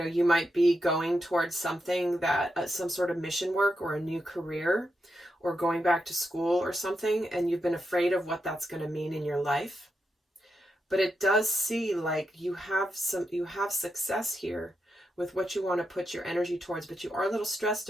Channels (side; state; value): both; normal; correlation 0.85